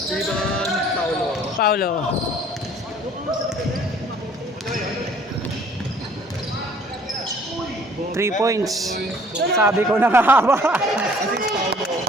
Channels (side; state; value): both; normal; correlation 0.55